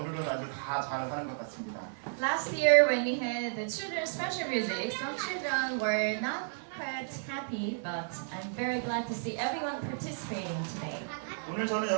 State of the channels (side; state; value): left; silent; 56 dB below the other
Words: 아주 다 잘하는 것 같습니다. Last year, when we had the children's special music, some children were not quite happy, but I'm very glad to see everyone participating today. 오늘 저는